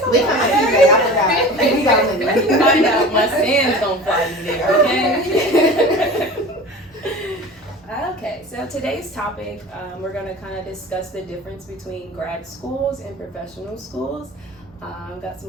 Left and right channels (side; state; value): both; normal; correlation 0.37